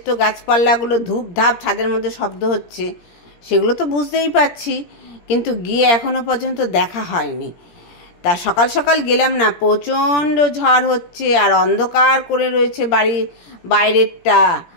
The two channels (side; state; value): right; late; 17 ms